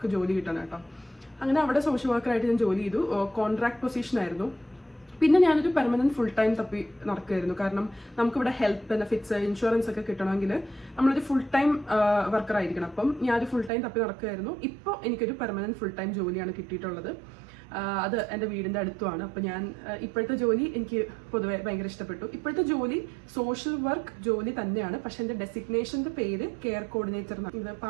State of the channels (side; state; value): left; drops out; at 13.7 s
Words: ജോലി കിട്ടുന്നത് കേട്ടോ. അങ്ങനെ അവിടെ സോഷ്യൽ വർക്കറായിട്ട് ഞാൻ ജോലി ചെയ്തു, കോൺട്രാക്ട് പൊസിഷൻ ആയിരുന്നു. പിന്നെ ഞാനൊരു പെർമനന്റ് ഫുൾ ടൈം തപ്പി നടക്കുമായിരുന്നു, കാരണം നമുക്കിവിടെ ഹെൽത്ത് ബെനിഫിറ്റ്സ് ഇൻഷുറൻസ് ഒക്കെ കിട്ടണമെങ്കിൽ നമ്മളൊരു ഫുൾ ടൈം വർക്കർ ആയിരിക്കണം. അപ്പം ഞാനൊരു ഫുൾ ടൈം തപ്പി നടക്കുമായിരുന്നു. ഇപ്പോൾ എനിക്കൊരു പെർമനന്റ് ഫുൾ ടൈം ജോലിയാണ് കിട്ടിയിട്ടുള്ളത്. അത് എൻ്റെ വീടിൻ്റെ അടുത്തുമാണ്. അപ്പോൾ ഞാൻ ഇപ്പോഴത്തെ ജോലി എനിക്ക് പൊതുവെ ഭയങ്കര ഇഷ്ടപ്പെട്ടു. ഇപ്പോഴത്തെ ജോലി സോഷ്യൽ വർക്ക് ജോലി തന്നെയാണ്, പക്ഷെ എൻ്റെ ഡെസിഗ്നേഷൻ്റെ പേര് കെയർ കോർഡിനേറ്റർ എന്നാണ്. ഇത്